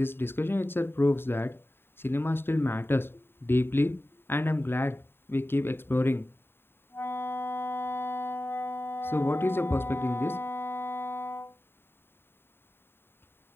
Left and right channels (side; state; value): right; late; 0.11 ms